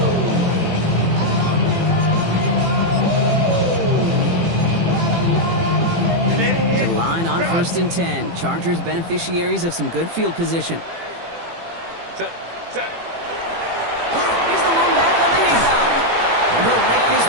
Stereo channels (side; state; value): left; late; 18 ms